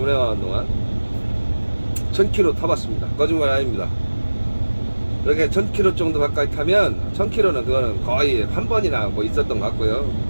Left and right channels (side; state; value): both; inverted; correlation -1.00